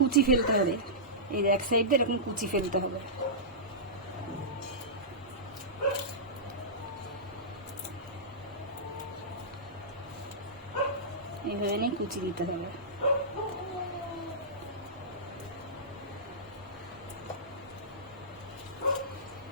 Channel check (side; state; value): both; normal; correlation -0.17